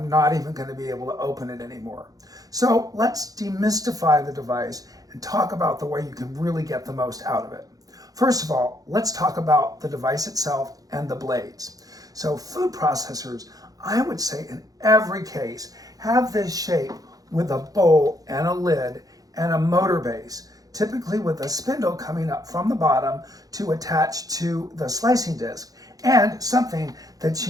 not even going to be able to open it anymore. So let's demystify the device and talk about the way you can really get the most out of it. First of all, let's talk about the device itself and the blades. So food processors, I would say in every case, have this shape with a bowl and a lid and a motor base, typically with a spindle coming up from the bottom to attach to the slicing disc, and something that's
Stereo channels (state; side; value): late; left; 0.18 ms